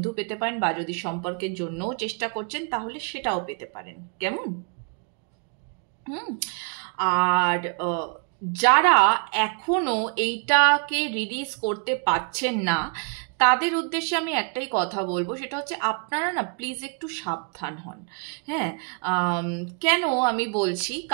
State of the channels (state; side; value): quieter; left; 39.2 dB